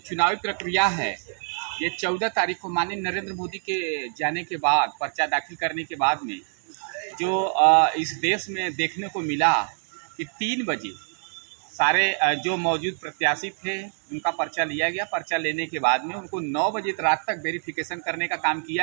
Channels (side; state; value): left; silent; digital silence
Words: प्रक्रिया है, ये 14 तारीख को माननीय नरेंद्र मोदी के जाने के बाद, पर्चा दाखिल करने के बाद में जो इस देश में देखने को मिला कि 3 बजे सारे जो मौजूद प्रत्याशी थे उनका पर्चा लिया गया। पर्चा लेने के बाद में उनको 9 बजे रात तक वेरिफिकेशन करने का काम